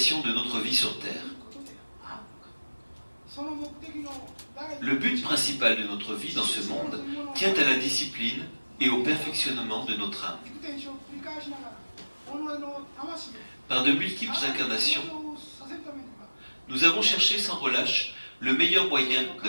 de notre vie sur Terre. Le but principal de notre vie dans ce monde tient à la discipline et au perfectionnement de notre âme. Par de multiples incarnations, nous avons cherché sans relâche le meilleur moyen de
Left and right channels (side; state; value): both; inverted; correlation -1.00